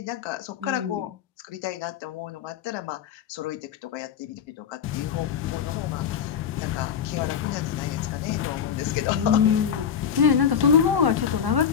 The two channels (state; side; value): quieter; right; 8.0 dB